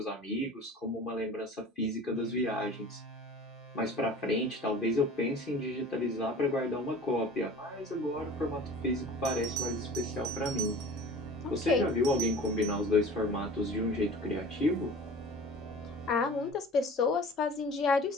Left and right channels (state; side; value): normal; both; correlation 0.42